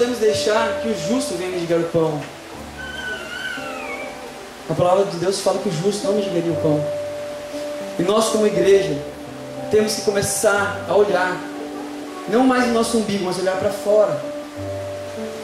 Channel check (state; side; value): identical; both; correlation 1.00